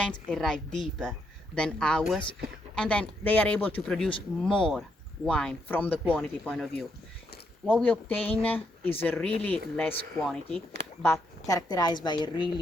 arrive deeper than ours, and then they are able to produce more wine from the quantity point of view. What we obtain is a really less quantity, but characterized by a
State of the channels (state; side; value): normal; both; correlation 0.78